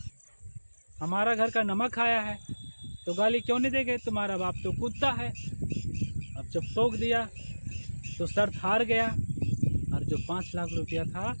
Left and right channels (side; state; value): both; inverted; correlation -1.00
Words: हमारा घर का नमक खाया है, तो गाली क्यों नहीं देंगे, तुम्हारा बाप तो कुत्ता है। अब जब टोक दिया तो शर्त हार गया, और जो 5 लाख रुपया था